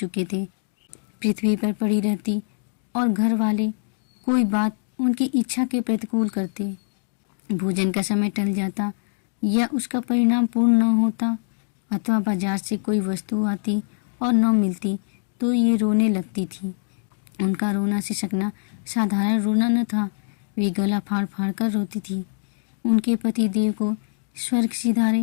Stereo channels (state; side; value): silent; right; digital silence